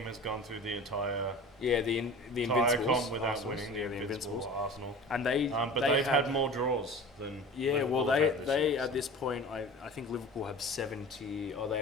has gone through the entire Yeah, the entire Invincibles. comp without Arsenals. winning. Yeah, the Invincibles. Arsenal. And they But they've had more draws than Yeah, Liverpool well, have had this they year, at so. this point, I think Liverpool have 70, or they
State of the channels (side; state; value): both; normal; correlation 0.38